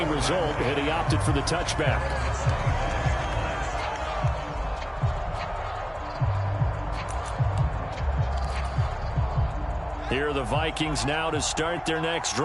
result, and he opted for the touchback. Here are the Vikings now to start their next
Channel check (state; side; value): identical; both; correlation 1.00